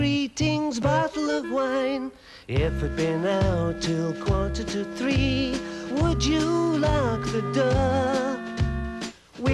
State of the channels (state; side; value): identical; both; correlation 1.00